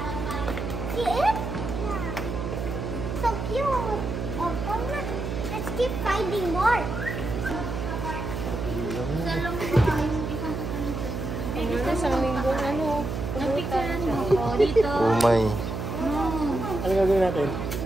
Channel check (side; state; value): right; noise; hum, 4 dB below the sound